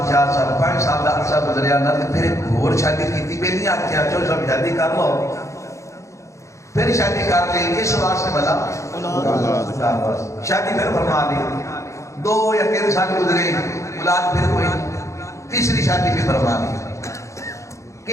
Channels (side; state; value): right; late; 0.15 ms